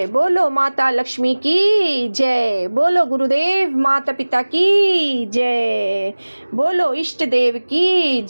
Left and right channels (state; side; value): inverted; both; correlation -1.00